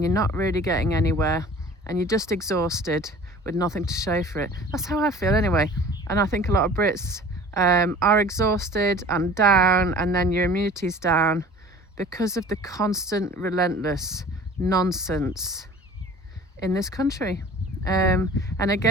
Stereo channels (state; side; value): normal; both; correlation 0.45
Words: you're not really getting anywhere, and you're just exhausted with nothing to show for it. That's how I feel anyway. And I think a lot of Brits are exhausted and down, and then your immunity's down because of the constant, relentless nonsense in this country. And